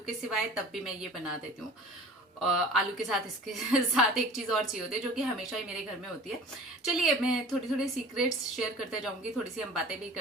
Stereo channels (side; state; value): both; normal; correlation 0.43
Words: के सिवाय, तब भी मैं ये बना देती हूँ। आलू के साथ इसके साथ एक चीज और चाहिए होती है जो कि हमेशा ही मेरे घर में होती है। चलिए मैं थोड़ी थोड़ी सीक्रेट्स शेयर करते जाऊंगी, थोड़ी सी हम बातें भी